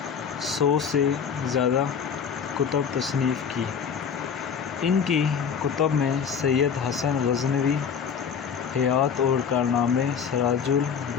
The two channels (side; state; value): right; quieter; 6.9 dB